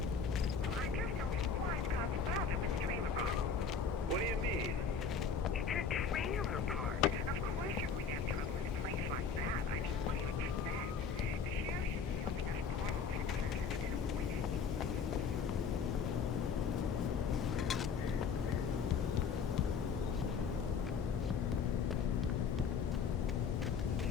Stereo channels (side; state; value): right; quieter; 5.8 dB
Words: What do you mean? It's a trailer park. Of course you're going to have trouble in a place like that. I mean, what do you expect? The sheriff should be helping us normal citizens instead of wasting.